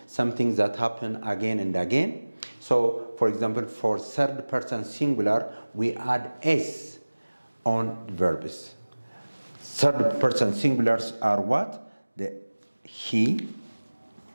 something that happen again and again. So, for example, for third person singular, we add S on verbs. Third person singulars are what? The he,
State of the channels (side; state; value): both; inverted; correlation -1.00